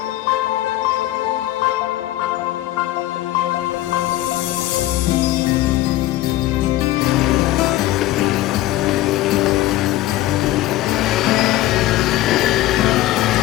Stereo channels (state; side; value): quieter; right; 15.5 dB